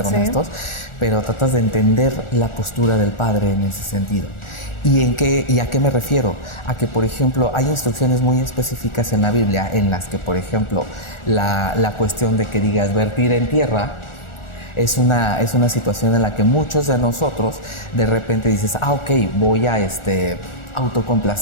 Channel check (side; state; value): right; late; 1.4 ms